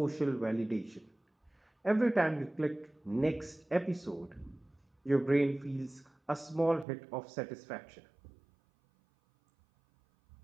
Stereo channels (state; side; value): drops out; left; at 6.9 s